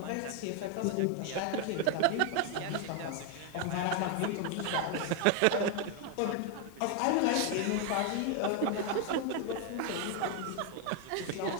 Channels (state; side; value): different; both; correlation 0.01